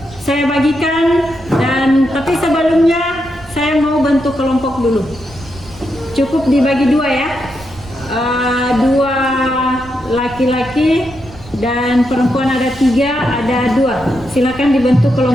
saya bagikan, dan tapi sebelumnya saya mau bentuk kelompok dulu. Cukup dibagi dua ya, dua laki-laki dan perempuan ada 3, ada 2. Silakan dibentuk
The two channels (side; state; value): right; noise; rumble, 19 dB below the sound